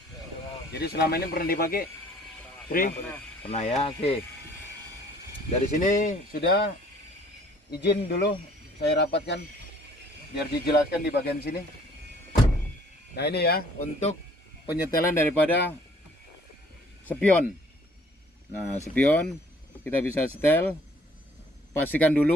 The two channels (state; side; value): normal; both; correlation 0.57